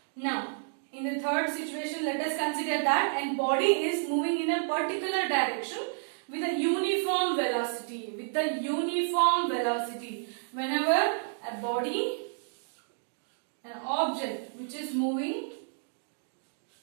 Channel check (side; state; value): left; silent; digital silence